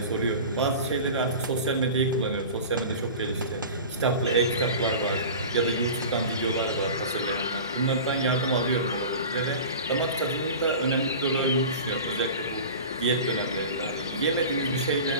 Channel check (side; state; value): both; inverted; correlation -0.35